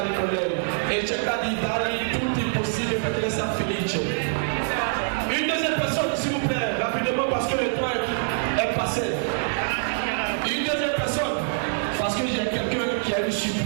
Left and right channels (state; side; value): silent; left; digital silence